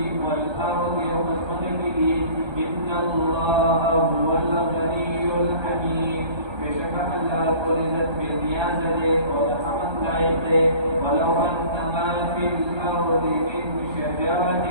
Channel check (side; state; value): left; late; 1.3 ms